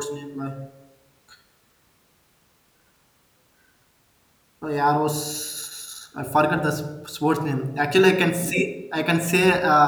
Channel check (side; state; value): both; identical; correlation 1.00